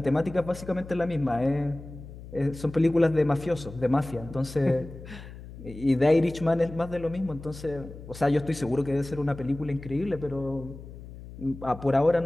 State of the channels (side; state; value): left; noise; hum, 15 dB below the sound